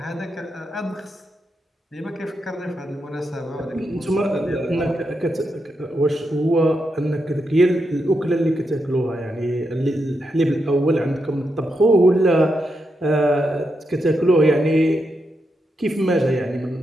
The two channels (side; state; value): both; normal; correlation 0.84